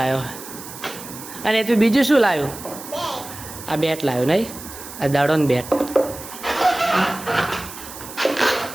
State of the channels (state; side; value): noise; right; hiss, 13 dB below the sound